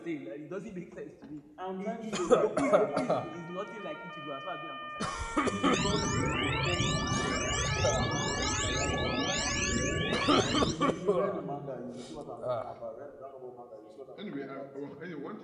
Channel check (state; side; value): identical; both; correlation 1.00